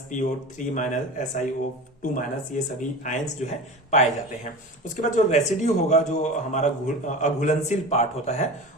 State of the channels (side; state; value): both; normal; correlation 0.31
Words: PO3 minus, SiO2 ये सभी आयंस जो है पाए जाते हैं। उसके बाद जो रेसिड्यू होगा, जो हमारा अघुलनशील पार्ट होता है,